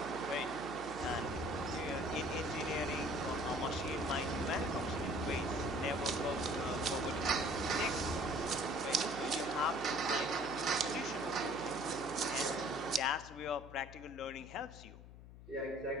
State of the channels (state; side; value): noise; left; hum, 16 dB below the sound